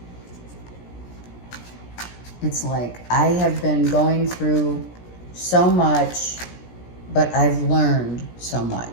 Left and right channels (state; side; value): late; right; 17 ms